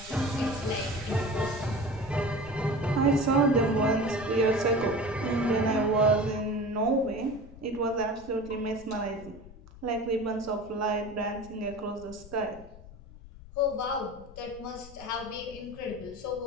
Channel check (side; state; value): left; noise; rumble, 18 dB below the sound